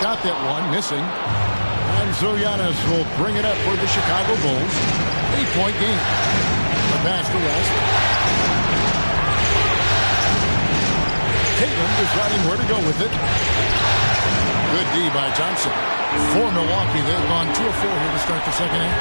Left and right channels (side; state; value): both; inverted; correlation -1.00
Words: that one, missing. And so Giannis will bring it up for the Chicago Bulls. 8-point game. The pass to West. Tatum deciding where to go with it. Good D by Thompson. For Milwaukee, they've gone 2 of 4 here to start the second